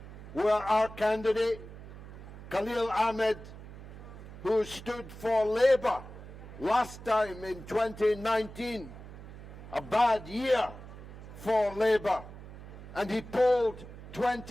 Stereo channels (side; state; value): right; noise; hum, 14 dB below the sound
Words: where our candidate, Khalil Ahmed, who stood for Labour last time in 2019, a bad year for Labour, and he polled